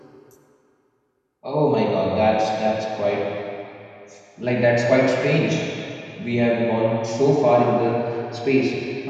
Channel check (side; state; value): both; identical; correlation 1.00